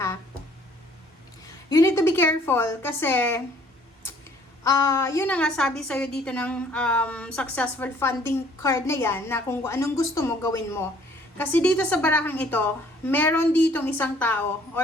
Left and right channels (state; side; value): normal; both; correlation 0.58